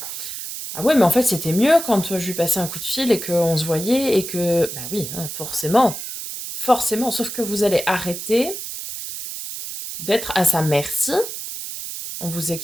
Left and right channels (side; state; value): right; noise; hiss, 8 dB below the sound